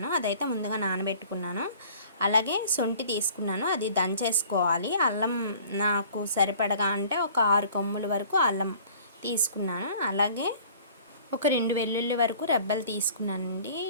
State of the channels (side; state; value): both; inverted; correlation -0.50